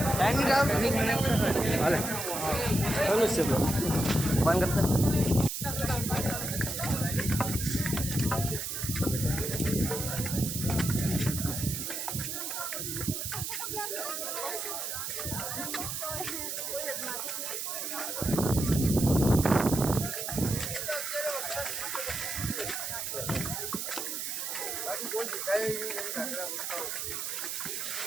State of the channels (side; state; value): right; noise; hiss, 4 dB below the sound